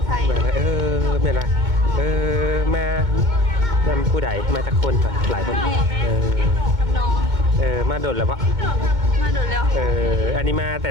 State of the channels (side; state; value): left; late; 2.2 ms